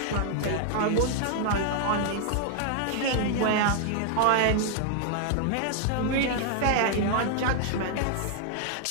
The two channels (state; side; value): different; both; correlation 0.00